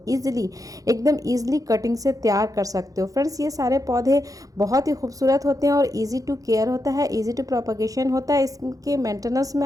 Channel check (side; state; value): left; late; 0.17 ms